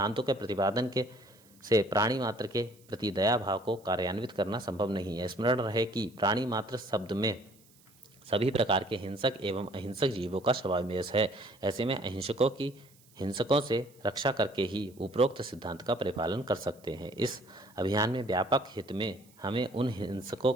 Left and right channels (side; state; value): right; noise; hiss, 29 dB below the sound